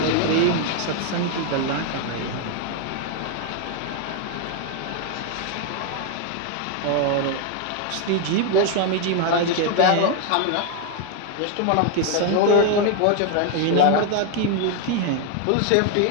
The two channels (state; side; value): different; both; correlation 0.01